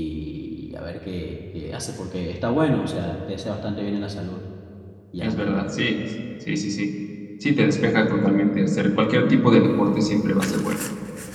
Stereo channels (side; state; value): both; identical; correlation 1.00